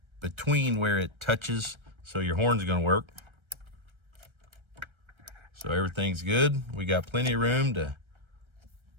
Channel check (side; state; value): left; late; 1.3 ms